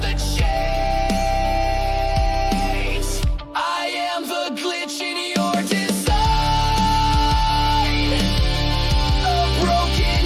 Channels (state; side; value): identical; both; correlation 1.00